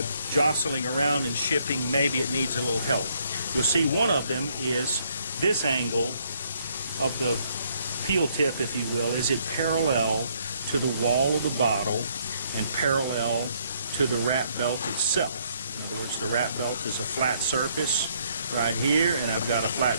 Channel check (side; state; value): both; inverted; correlation -0.69